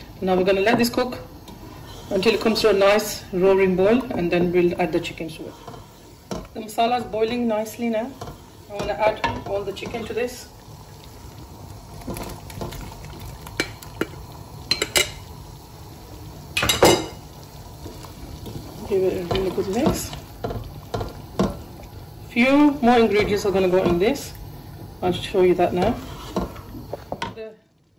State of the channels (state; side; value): identical; both; correlation 1.00